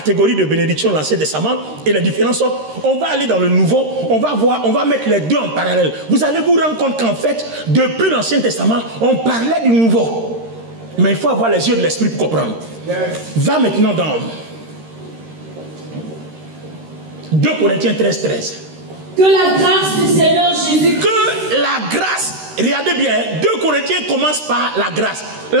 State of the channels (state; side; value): late; left; 13 ms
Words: de bénédiction de l'Ancien Testament et les différences. On va aller dans le Nouveau, on va mettre les deux en parallèle. Vous allez vous rendre compte qu'en fait, depuis l'Ancien Testament, on parlait du Nouveau. Mais il faut avoir les yeux de l'Esprit pour comprendre. Va maintenant dans 2 Corinthiens 13. Que la grâce du Seigneur Jésus. Que la grâce, regardez bien, 2 Corinthiens commence par la grâce.